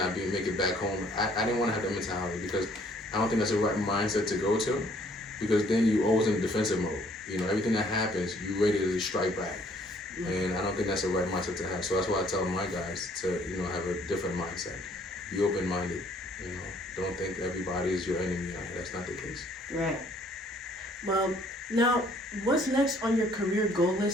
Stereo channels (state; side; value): normal; both; correlation 0.62